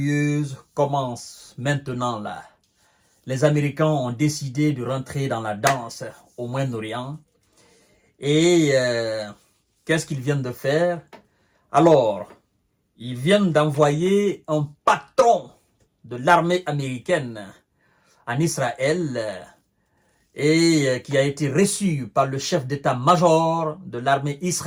commencent maintenant là. Les Américains ont décidé de rentrer dans la danse au Moyen-Orient. Et qu'est-ce qu'ils viennent de faire? Alors, ils viennent d'envoyer un patron de l'armée américaine en Israël et qui a été reçu par le chef d'état-major de l'armée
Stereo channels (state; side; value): identical; both; correlation 1.00